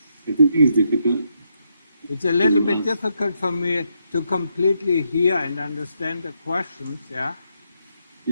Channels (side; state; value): both; inverted; correlation -0.79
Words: I think it's difficult. It's a little bit difficult for me to completely hear and understand the questions, yeah?